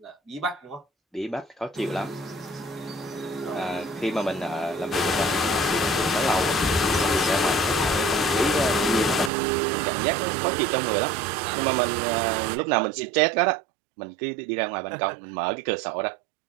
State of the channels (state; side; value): drops out; left; at 9.3 s